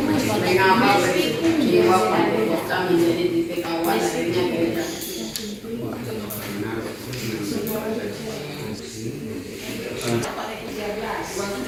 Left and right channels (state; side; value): identical; both; correlation 1.00